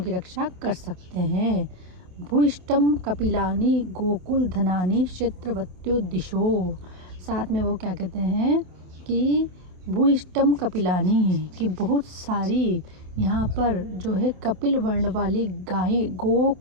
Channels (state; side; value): late; left; 27 ms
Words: की रक्षा कर सकते हैं। भूइष्टम कपिलानि गोकुल धनानि क्षेत्रवत्यो दिशो, साथ में वो क्या कहते हैं कि भूइष्टम कपिलानि, कि बहुत सारी यहाँ पर जो है कपिल वर्ण वाली गाय,